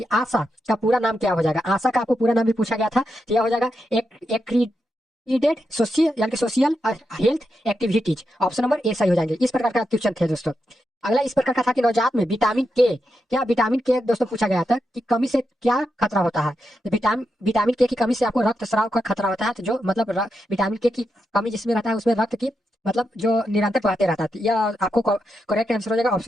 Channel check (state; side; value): normal; both; correlation 0.86